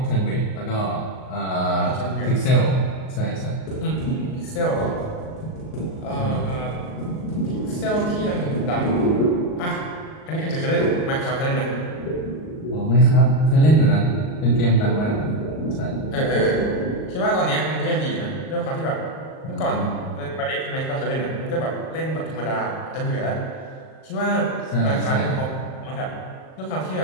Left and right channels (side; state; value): right; late; 38 ms